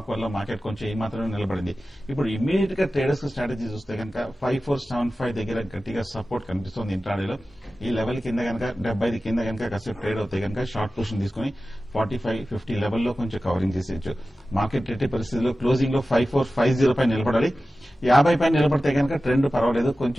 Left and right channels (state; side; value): normal; both; correlation 0.95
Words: వల్ల మార్కెట్ కొంచెం ఈ మాత్రమే నిలబడింది. ఇప్పుడు ఇమ్మీడియట్ గా ట్రేడర్స్ స్ట్రాటజీ చూస్తే కనుక 5475 దగ్గర గట్టిగా సపోర్ట్ కనిపిస్తుంది ఇంట్రాడేలో. ఈ లెవెల్ కింద కనుక 75 కింద కనుక కాసేపు ట్రేడ్ అవుతాయి కనుక షార్ట్ పొజిషన్ తీసుకుని 45-50 లెవెల్లో కొంచెం కవరింగ్ చేసేయచ్చు. మార్కెట్ ఎట్టి పరిస్థితుల్లో క్లోజింగ్ లో 5450 పై నిలబడాలి. 50 పై నిలబడితే కనుక ట్రెండ్ పర్వాలేదు,